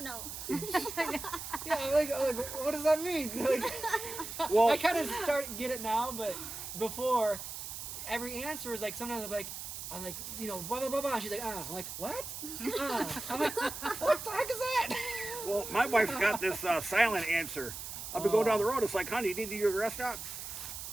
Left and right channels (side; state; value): right; noise; hiss, 8 dB below the sound